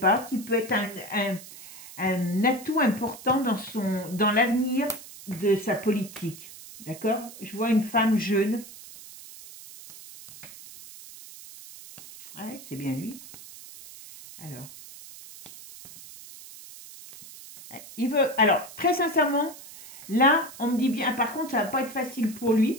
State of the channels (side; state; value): right; noise; hiss, 16 dB below the sound